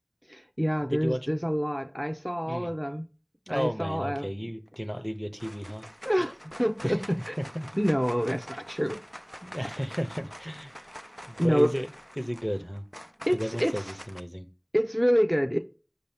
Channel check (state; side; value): identical; both; correlation 1.00